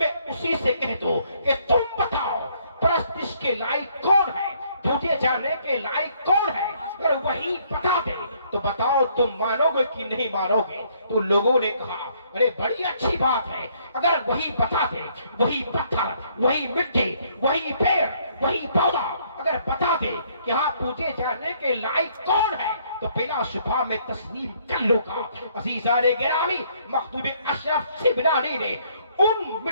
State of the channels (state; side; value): inverted; both; correlation -0.66